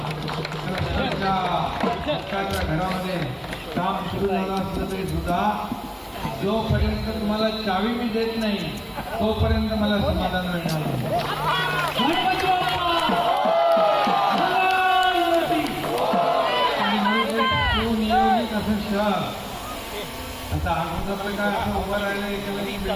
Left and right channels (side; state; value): both; identical; correlation 1.00